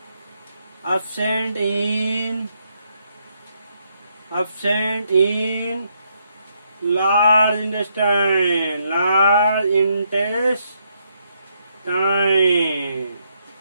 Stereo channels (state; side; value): inverted; both; correlation -0.76